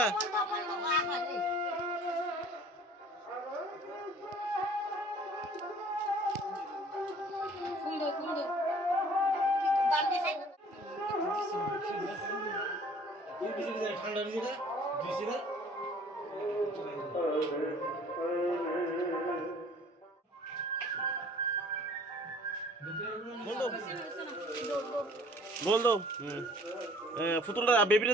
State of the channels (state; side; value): normal; both; correlation 0.52